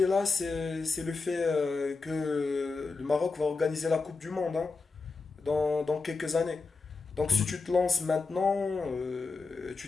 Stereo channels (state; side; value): quieter; right; 4.1 dB